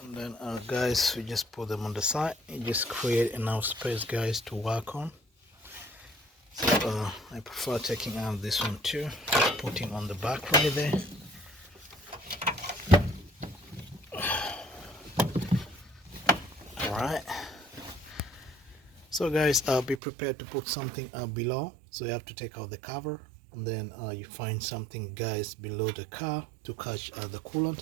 And then guys, we just put them on the side. You just create enough space guys to work on. So I prefer taking out this one too, just putting on the back right there. Alright, so guys, be prepared to put something below. So you have to take out the cover, and then you find something guys below the car to catch the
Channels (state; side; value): drops out; left; at 20.0 s